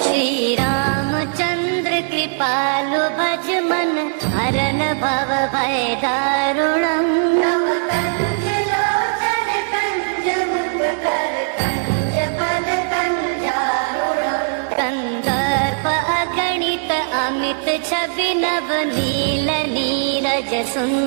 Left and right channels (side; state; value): left; silent; digital silence